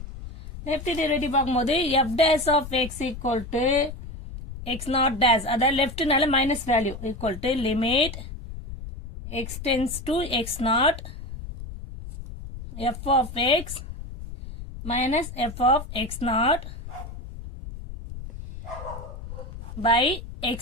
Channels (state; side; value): noise; left; rumble, 11 dB below the sound